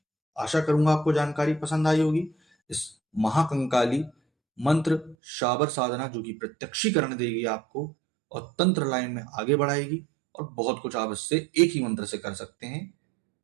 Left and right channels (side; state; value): left; drops out; at 5.2 s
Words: आशा करूंगा आपको जानकारी पसंद आई होगी। इस महाकंकाली मंत्र शाबर साधना जो कि प्रत्यक्षीकरण देगी आपको और तंत्र लाइन में आगे बढ़ाएगी, और बहुत कुछ आप इससे एक ही मंत्र से कर सकते हैं।